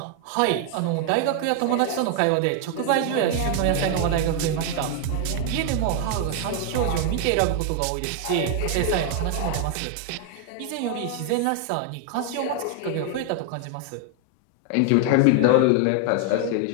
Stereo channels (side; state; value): both; different; correlation 0.00